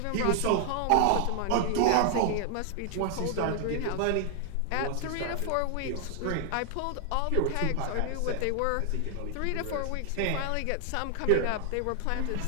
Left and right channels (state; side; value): different; both; correlation 0.00